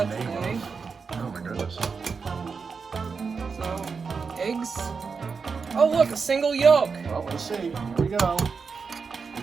the name today. of. Oh my goodness. So, eggs. Oh look, a single yolk. Well, let's see. Here we go. We're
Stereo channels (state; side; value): quieter; left; 5.3 dB